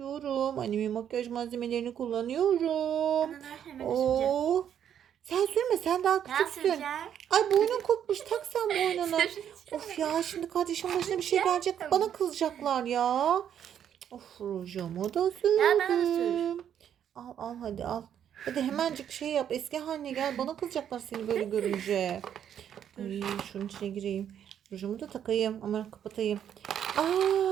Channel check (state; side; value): quieter; left; 9.4 dB